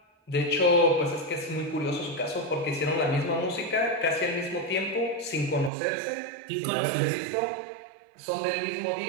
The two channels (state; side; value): drops out; left; at 5.7 s